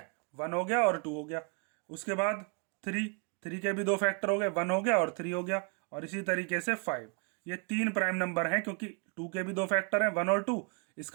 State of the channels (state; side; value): quieter; left; 34.8 dB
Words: 1 हो गया और 2 हो गया। उसके बाद 3 के भी 2 फैक्टर हो गए, 1 हो गया और 3 हो गया। और इसी तरीके से 5। ये 3 प्राइम नंबर हैं, क्योंकि 2 के भी 2 फैक्टर हैं, 1 और 2,